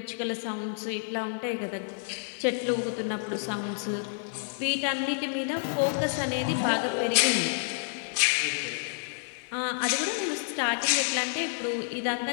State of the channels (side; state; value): right; silent; digital silence